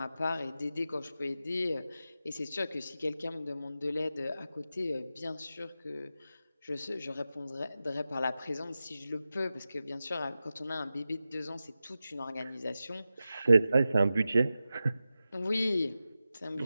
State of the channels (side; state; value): both; inverted; correlation -0.93